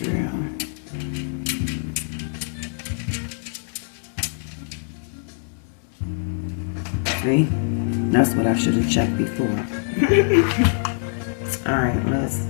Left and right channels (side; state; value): right; silent; digital silence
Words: drill. See? That's what I should have checked before. Alright, let's